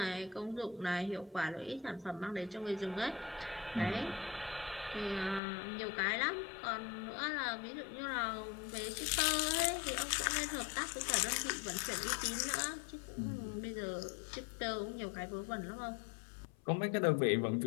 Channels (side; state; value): right; drops out; at 5.4 s